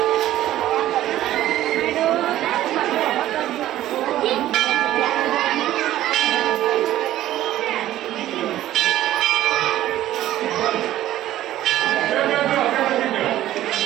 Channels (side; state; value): left; quieter; 13.7 dB